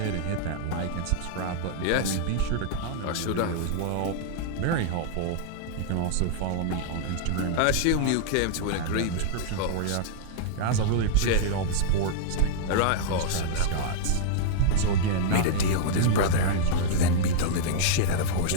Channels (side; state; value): both; different; correlation -0.02